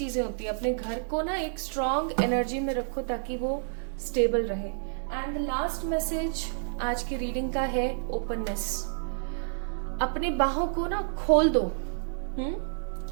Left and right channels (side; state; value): left; silent; 58 dB below the other